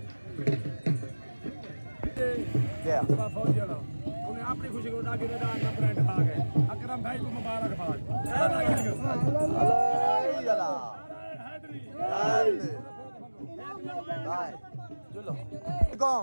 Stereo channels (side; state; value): both; inverted; correlation -1.00